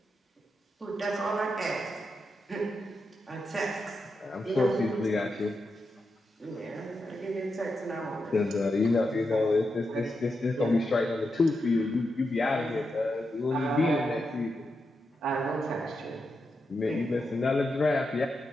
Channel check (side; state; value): both; normal; correlation 0.86